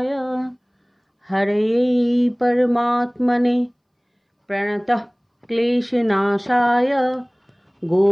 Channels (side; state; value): both; identical; correlation 1.00